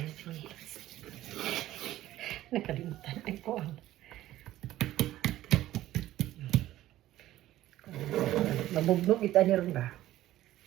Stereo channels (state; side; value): quieter; left; 14.5 dB